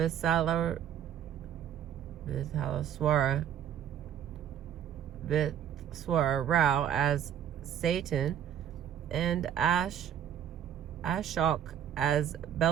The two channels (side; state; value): left; quieter; 9.7 dB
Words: Rao as Satan and Ashok as